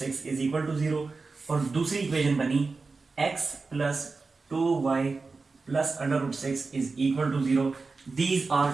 is equal to zero, और दूसरी इक्वेशन बनी x plus two y plus under root six is equal to zero. These are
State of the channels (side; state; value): left; quieter; 4.1 dB